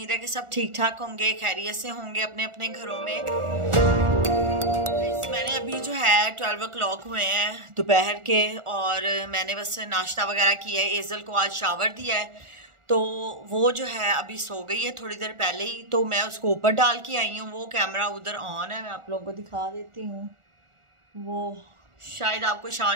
है कि सब ठीक ठाक होंगे, खैरियत से होंगे अपने अपने घरों में। मैंने अभी जो है 12 o'clock हुए हैं दोपहर के, और मैंने बस नाश्ता वगैरह किया है। एजल को आज शावर दिया है तो वो जो है अभी सो गई है थोड़ी देर पहले ही, तो मैं उसको ऊपर डाल के आई हूँ। वो कैमरा उधर ऑन है, मैं आप लोगों को दिखा देती हूँ। वो शायद आपको शां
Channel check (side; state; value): left; late; 1.4 ms